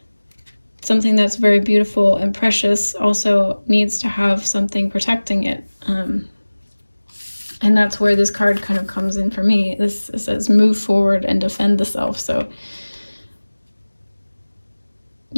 something that's very beautiful and precious also needs to have something protecting it. And that's where this card kind of comes in for me. It says move forward and defend the self. So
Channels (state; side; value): inverted; both; correlation -1.00